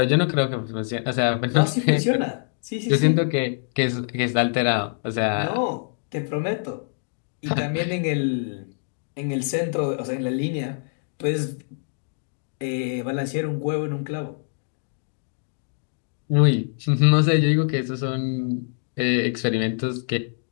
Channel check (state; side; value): silent; right; digital silence